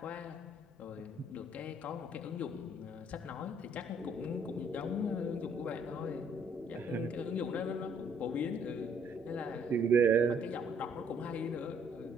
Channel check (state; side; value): normal; both; correlation 0.64